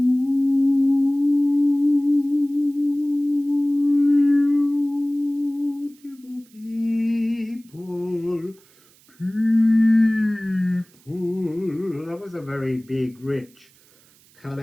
people, people. That was a very big, rich,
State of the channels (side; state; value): right; noise; hiss, 29 dB below the sound